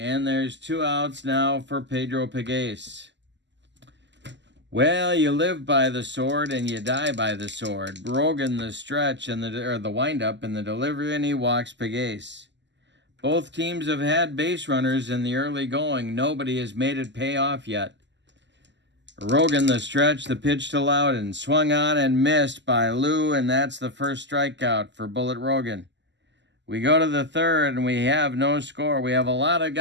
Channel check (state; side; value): late; left; 0.52 ms